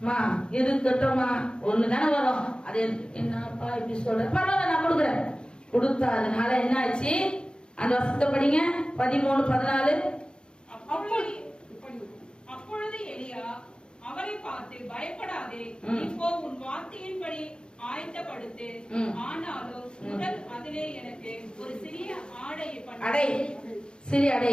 இருக்கட்டும்மா ஒண்ணுதானே வரும், அது என்னப்பா இப்படி சொல்ற, பரவாயில்ல நான் கொடுக்குறேன். கொடுத்தா அதனால என்ன ஆச்சு, அந்த வசனத்தை படிங்க. 13:14. அப்பொழுது எலியா அவரை பார்த்து, பயப்படாதே, இப்போ உன் வார்த்தையின்படி ஆயத்தப்படுத்து. ஆனாலும் முதல் அதிலே எனக்கு ஒரு சிறிய ஆடையை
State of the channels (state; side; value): late; right; 0.050 ms